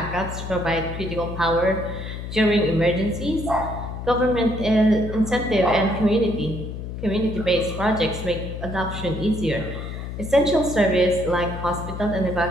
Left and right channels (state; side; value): noise; left; hum, 7 dB below the sound